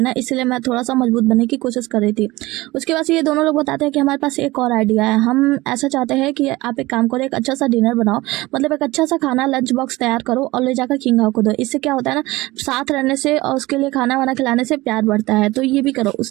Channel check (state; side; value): quieter; left; 20.0 dB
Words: ना, इसलिए मैं थोड़ा सा मजबूत बनने की कोशिश कर रही थी। उसके बाद ये दोनों लोग बताते हैं कि हमारे पास एक और आइडिया है, हम ऐसा चाहते हैं कि आप एक काम करो, एक अच्छा सा डिनर बनाओ, मतलब एक अच्छा सा खाना लंच बॉक्स तैयार करो और ले जाकर किंग हाउ को दो। इससे क्या होता है ना, साथ रहने से और उसके लिए खाना वाना खिलाने से प्यार बढ़ता है। तो ये भी करो,